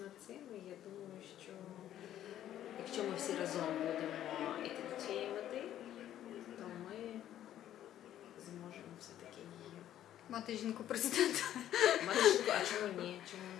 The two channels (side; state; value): right; quieter; 11.7 dB